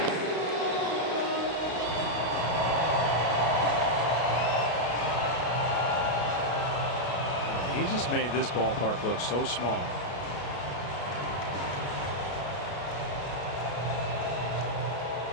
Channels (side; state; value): right; late; 33 ms